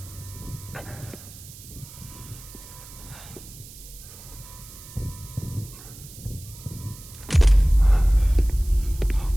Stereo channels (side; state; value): right; noise; hiss, 17 dB below the sound